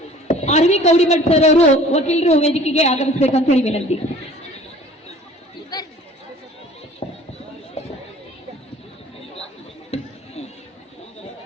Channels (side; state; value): both; normal; correlation 0.49